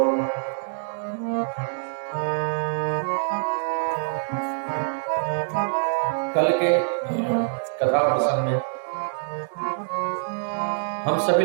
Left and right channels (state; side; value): silent; left; digital silence